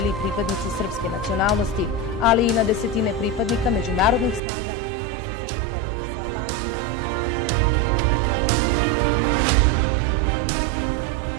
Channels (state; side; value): drops out; left; at 4.4 s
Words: i pripadnici srpske nacionalnosti, ali i na desetine pripadnika međunarodnih snaga koji su se sukobili sa Albancima.